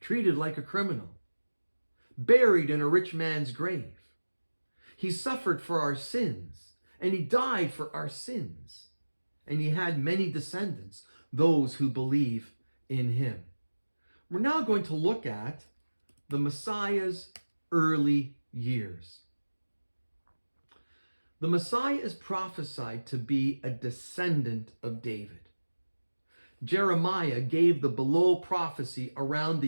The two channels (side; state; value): both; inverted; correlation -1.00